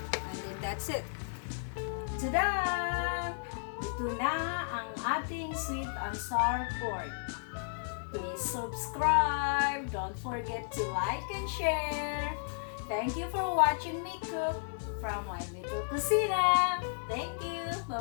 And then that's it. Tada! Ito na ang ating sweet and sour pork. Please subscribe. Don't forget to like and share. Thank you for watching me cook from My Little Cocina. Thank you.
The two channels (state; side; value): silent; right; digital silence